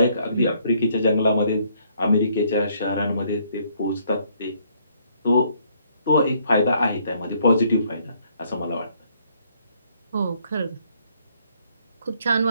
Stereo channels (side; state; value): both; inverted; correlation -0.67